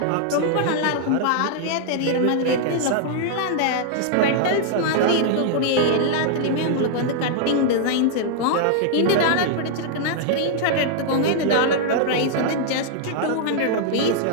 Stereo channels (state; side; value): different; both; correlation -0.01